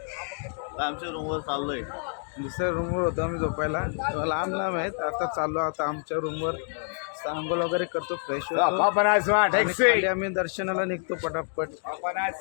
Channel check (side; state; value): right; silent; 57 dB below the other